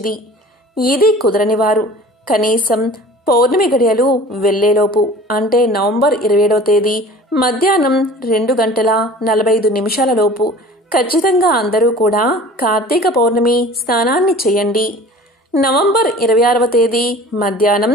ఇది కుదరని వారు కనీసం పౌర్ణమి గడియలు వెళ్లేలోపు అంటే నవంబర్ 27వ తేదీ మధ్యాహ్నం 2:45 లోపు ఖచ్చితంగా అందరూ కూడా కార్తీక పౌర్ణమి స్నానాన్ని చేయండి. నవంబర్ 26వ తేదీ మధ్యాహ్నం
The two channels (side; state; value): both; normal; correlation 0.43